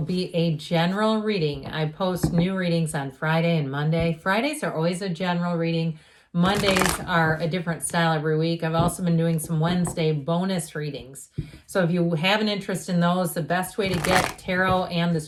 a general reading. I post new readings on Friday and Monday. Fridays are always a general reading. Mondays are a different style every week. I've also been doing some Wednesday bonus readings. So if you have an interest in those, the best way to get tarot and this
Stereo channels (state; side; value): identical; both; correlation 1.00